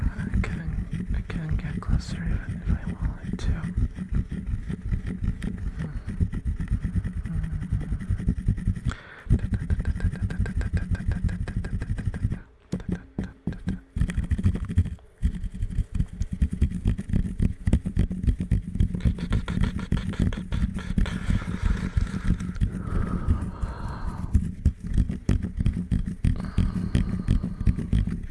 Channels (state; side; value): identical; both; correlation 1.00